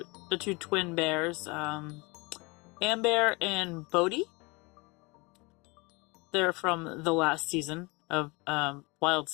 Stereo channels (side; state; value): right; quieter; 26.7 dB